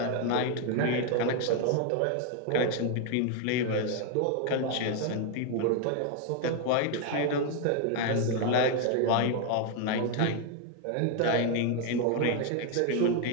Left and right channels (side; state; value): both; different; correlation 0.01